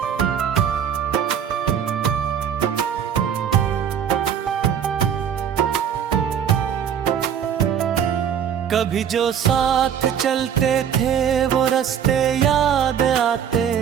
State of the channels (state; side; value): quieter; left; 8.5 dB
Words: कभी जो साथ चलते थे वो रास्ते याद आते